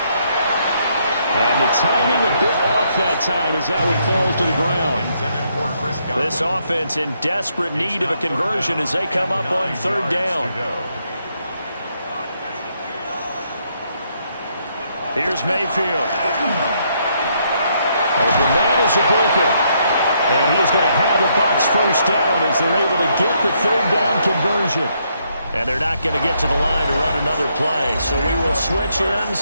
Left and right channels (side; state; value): both; inverted; correlation -0.74